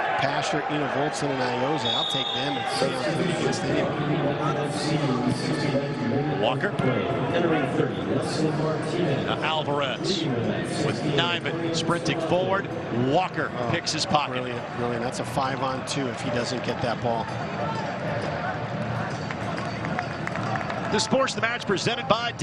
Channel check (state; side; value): identical; both; correlation 1.00